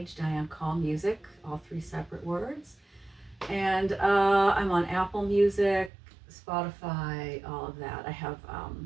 Diane Coll Music, all 3 separate words. And I'm on Apple Music, Spotify, all of that. I have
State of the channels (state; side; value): drops out; left; at 5.9 s